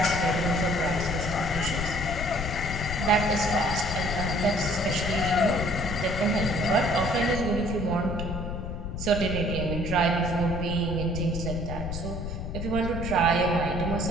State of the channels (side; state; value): left; noise; rumble, 5 dB below the sound